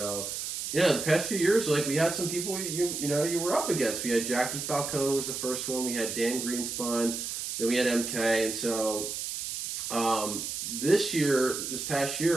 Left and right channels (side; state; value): right; noise; hiss, 5 dB below the sound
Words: yeah, the past few years, like we had some people you were up against. We had Jackie Falcone was the first one. We had Dan Greenspun. Then we had MK. And so this past